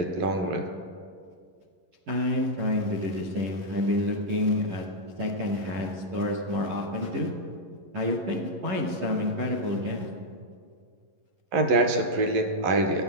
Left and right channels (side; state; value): left; late; 11 ms